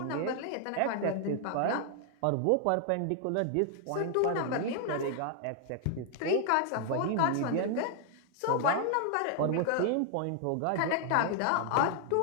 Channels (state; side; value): different; both; correlation 0.00